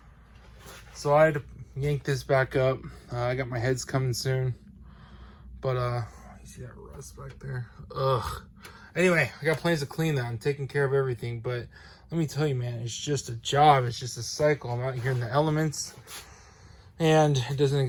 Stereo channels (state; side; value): identical; both; correlation 1.00